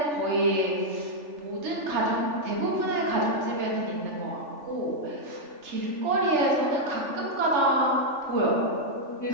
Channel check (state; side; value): late; left; 3.4 ms